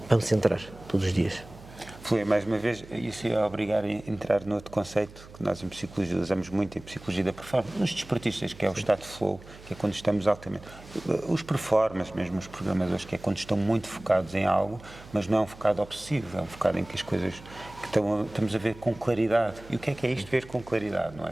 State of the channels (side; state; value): right; noise; hum, 19 dB below the sound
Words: para me centrar todos os dias. Flui, mais uma vez, isso ia obrigar a entrar noutro conceito que nós em psicologia usamos muito, em psicologia da performance, nos desportistas, que é o estado de flow, que é quando estamos altamente. Os performers, mesmo os programadores, que é quando estão muito focados em algo, mas não é um focado obsessivo, é um focado em que as coisas que estamos a ver com claridade. E o que é isto ver com claridade, não